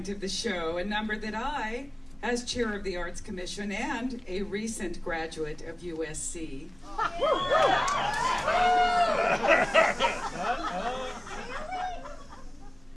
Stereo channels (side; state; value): right; noise; hum, 28 dB below the sound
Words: of the show, a number that I, as chair of the Arts Commission and a recent graduate of USC,